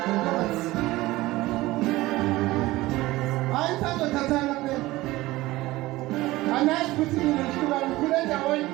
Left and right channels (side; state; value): left; quieter; 18.6 dB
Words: hayi sazothathana phela anazi ukuthi mina ndihlukane kule ndaweni